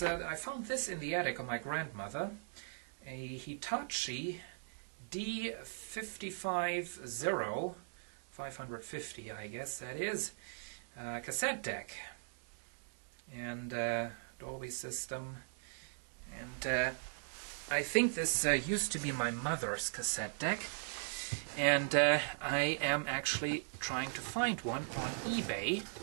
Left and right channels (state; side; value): silent; left; digital silence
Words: I found this in the attic of my grandmother, a Hitachi D550, 550 I guess that is, cassette deck. And Dolby system. And I think this used to be my mother's cassette deck, and I am actually trying to find one on eBay